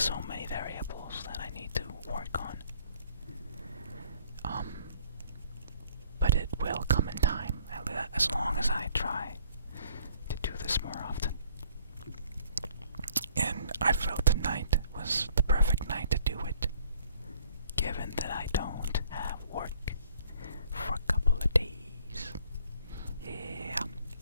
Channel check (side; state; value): both; inverted; correlation -0.58